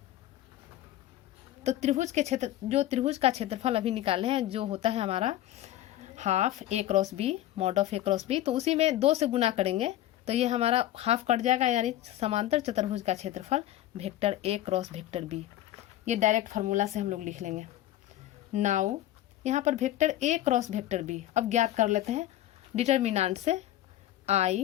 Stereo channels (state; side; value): quieter; right; 13.7 dB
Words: तो त्रिभुज का क्षेत्रफल अभी निकाले हैं, जो होता है हमारा half a cross b mod of a cross b, तो उसी में 2 से गुना करेंगे तो ये हमारा हाफ कट जाएगा, यानी समांतर चतुर्भुज का क्षेत्रफल vector a cross vector b। ये डायरेक्ट फार्मूला से हम लोग लिख लेंगे। नाउ यहाँ पर vector a cross vector b अब ज्ञात कर लेते हैं डिटर्मिनेंट से,